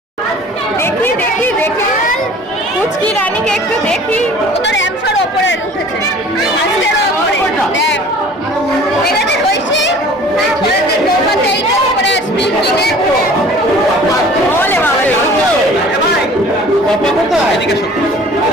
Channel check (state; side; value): normal; both; correlation 0.47